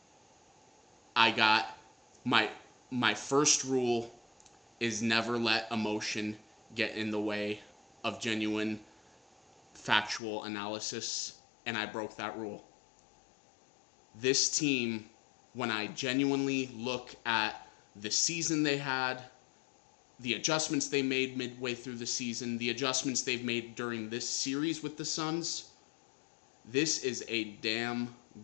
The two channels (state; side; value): drops out; right; at 10.2 s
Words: I got my first rule is never let emotion get in the way of genuine factual analysis, and I broke that rule. This team, when I genuinely look at the season they had, the adjustments they made midway through the season, the adjustments they've made during this series with the Suns, this is a damn